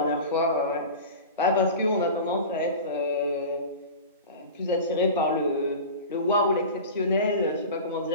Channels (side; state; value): both; inverted; correlation -0.33